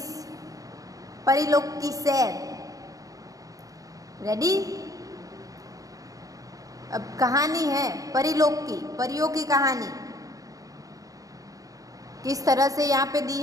परिलोक की सैर। रेडी? अब कहानी है परिलोक की, परियों की कहानी किस तरह से यहाँ पे दी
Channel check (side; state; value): left; late; 0.17 ms